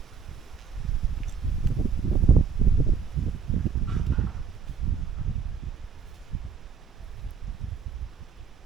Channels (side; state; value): left; quieter; 6.2 dB